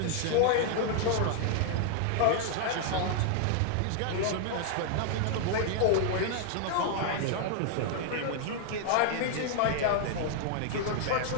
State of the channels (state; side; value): different; both; correlation 0.00